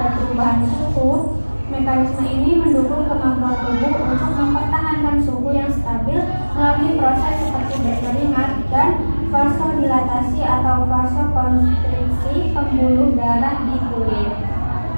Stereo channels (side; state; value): both; inverted; correlation -1.00